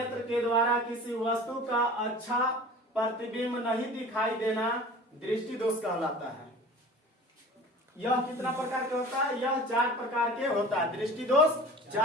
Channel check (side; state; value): both; normal; correlation 0.41